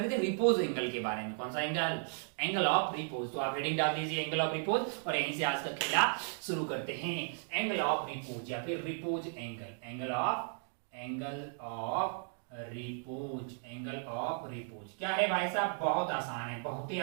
रहे थे रिपोज एंगल के बारे में। कौन सा एंगल? Angle of repose. तो आप हेडिंग डाल दीजिए एंगल ऑफ रिपोज और यहीं से आज का खेला शुरू करते हैं। एंगल ऑफ रिपोज या फिर repose angle. Angle of repose. Angle of repose क्या है भाई साहब? बहुत आसान है, बहुत ही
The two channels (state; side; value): silent; left; 54 dB below the other